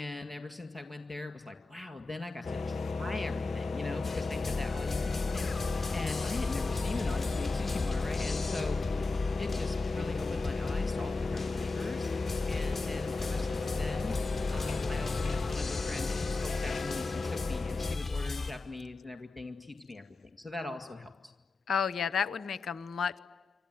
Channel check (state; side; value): quieter; right; 3.5 dB